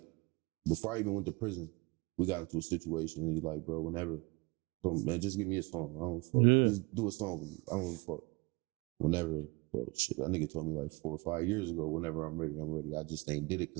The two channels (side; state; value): left; quieter; 25.9 dB